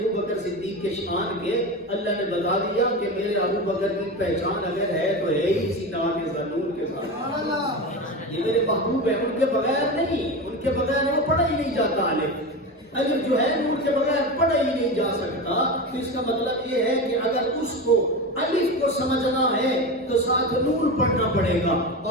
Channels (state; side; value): normal; both; correlation 0.23